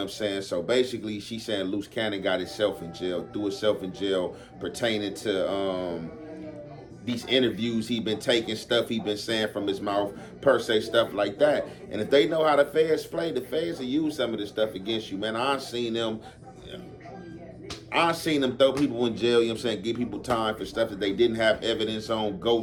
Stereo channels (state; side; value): identical; both; correlation 1.00